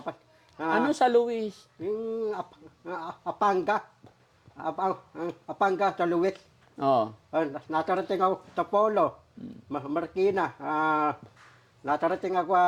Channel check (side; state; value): both; identical; correlation 1.00